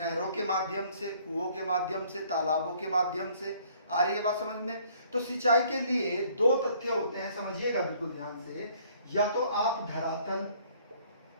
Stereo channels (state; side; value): inverted; both; correlation -0.60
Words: के माध्यम से, कुओं के माध्यम से, तालाबों के माध्यम से। आ रही है बात समझ में। तो सिंचाई के लिए दो तथ्य होते हैं, समझिएगा बिल्कुल ध्यान से। या तो आप धरातल